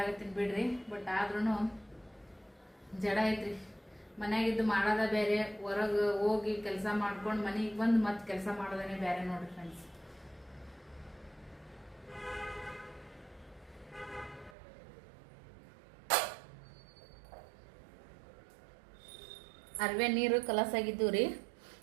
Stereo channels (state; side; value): drops out; left; at 14.6 s